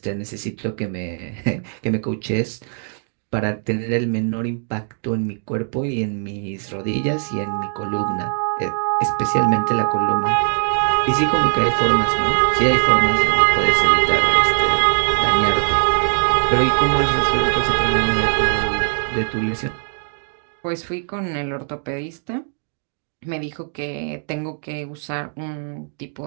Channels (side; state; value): left; silent; 57 dB below the other